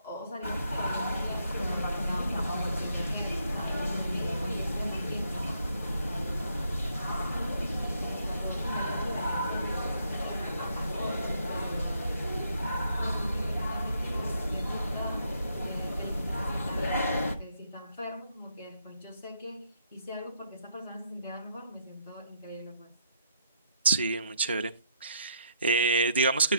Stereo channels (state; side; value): inverted; both; correlation -0.72